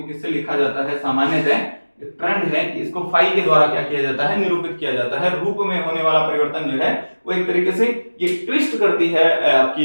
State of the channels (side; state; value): both; inverted; correlation -1.00